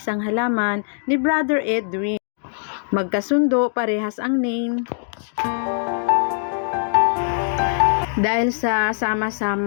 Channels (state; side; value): silent; right; digital silence